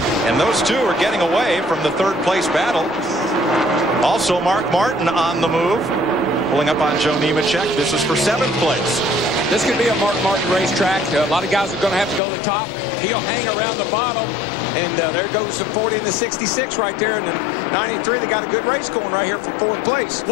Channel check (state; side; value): drops out; right; at 12.2 s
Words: And those two are getting away from the 3rd place battle. Also, Mark Martin on the move, pulling up on Joe Nemechek. This is for 7th place. This could be a Mark Martin racetrack. A lot of guys are going to have to go to the top. He'll hang around the bottom. And there goes the 40 and the 66 right there. And then 93, they got a good race going right here for 4th place.